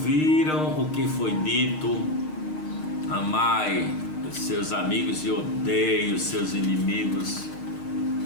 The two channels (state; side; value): late; right; 6.5 ms